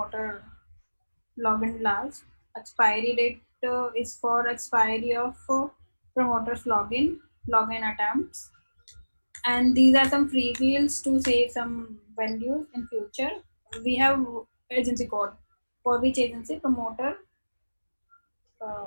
login last. Expiry date is for expiry of promoter's login attempts. And these are some free fields to save some values in future. We have agency code for which agency promoter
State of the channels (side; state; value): both; inverted; correlation -1.00